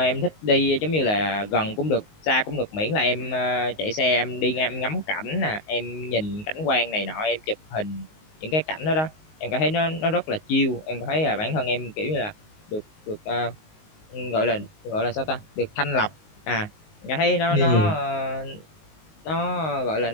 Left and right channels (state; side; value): late; right; 19 ms